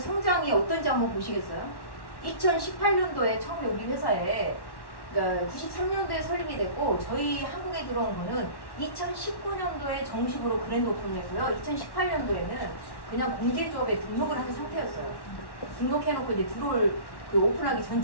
어떤지 한번 보시겠어요? 2018년도에 처음에 우리 회사에 그러니까 93년도에 설립이 됐고 저희 한국에 들어온 거는 2019년도에 정식으로 그랜드 오픈을 했고요. 2018년도에는 그냥 공제조합에 등록을 한 상태였어요. 등록해놓고 이제 들어올 그 오픈하기 전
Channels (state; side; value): late; right; 1.1 ms